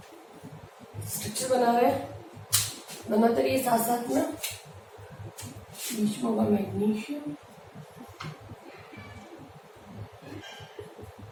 स्ट्रक्चर बनाते रहिए साथ साथ में। बीच में होगा मैग्नीशियम,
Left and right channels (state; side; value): identical; both; correlation 1.00